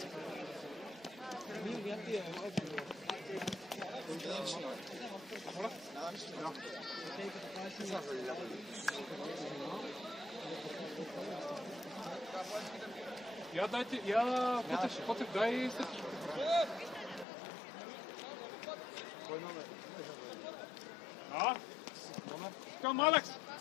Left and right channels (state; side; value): drops out; right; at 17.2 s